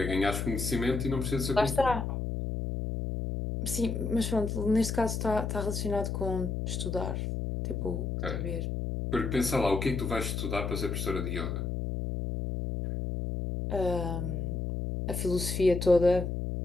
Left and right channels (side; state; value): left; noise; hum, 2 dB below the sound